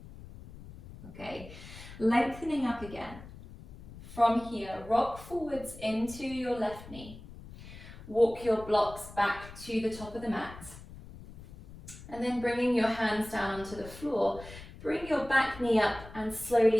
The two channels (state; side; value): noise; left; rumble, 16 dB below the sound